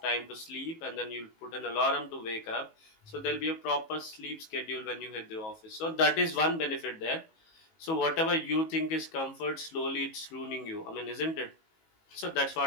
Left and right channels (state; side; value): late; right; 19 ms